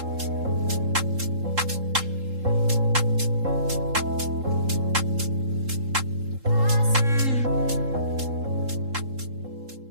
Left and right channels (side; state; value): left; late; 3.7 ms